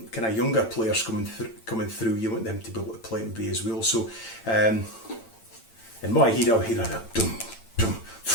kind of younger players coming through. You want them to be able to play and be as well. So in my head, I'll hear a dum dum.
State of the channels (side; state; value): right; late; 8.9 ms